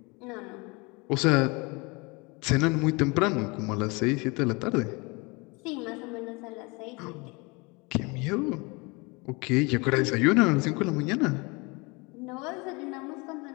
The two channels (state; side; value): quieter; right; 27.6 dB